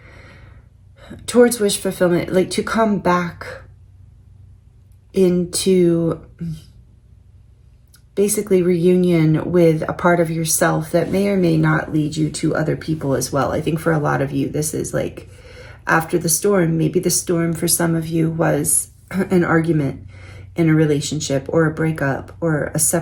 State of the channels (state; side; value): identical; both; correlation 1.00